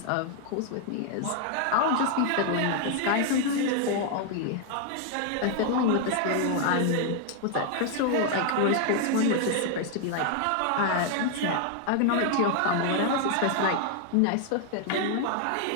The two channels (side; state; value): both; different; correlation 0.00